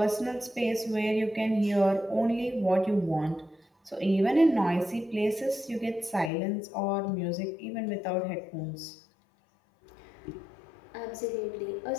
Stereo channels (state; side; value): drops out; right; at 6.3 s